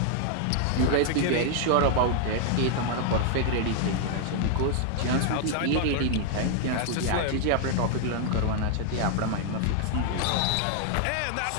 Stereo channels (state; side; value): different; both; correlation 0.00